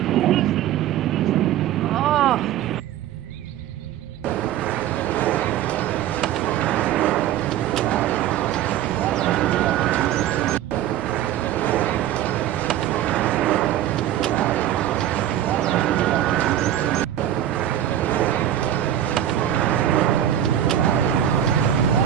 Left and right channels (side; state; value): left; quieter; 11.3 dB